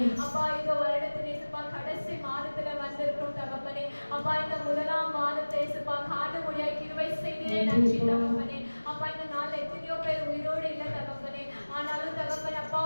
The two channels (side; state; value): both; inverted; correlation -1.00